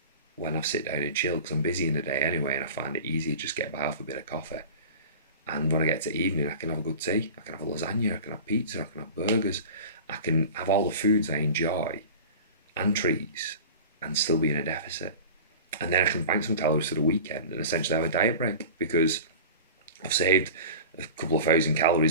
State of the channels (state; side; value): inverted; both; correlation -0.36